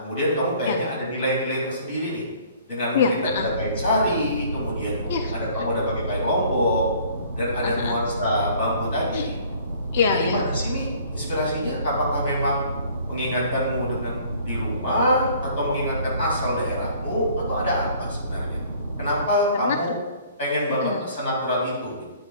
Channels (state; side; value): inverted; both; correlation -0.55